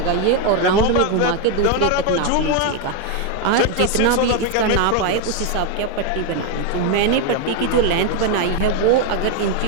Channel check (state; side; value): different; both; correlation 0.02